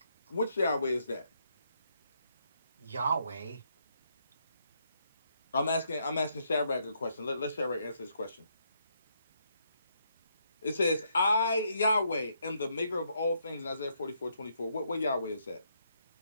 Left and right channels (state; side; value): inverted; both; correlation -0.75